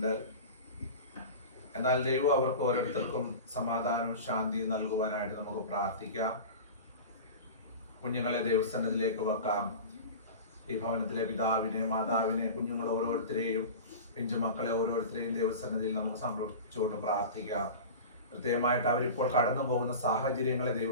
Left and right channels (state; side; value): inverted; both; correlation -0.32